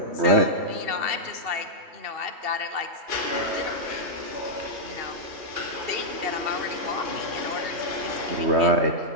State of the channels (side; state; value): left; late; 2.7 ms